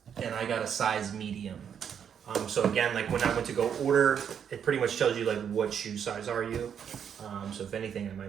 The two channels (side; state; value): left; quieter; 8.1 dB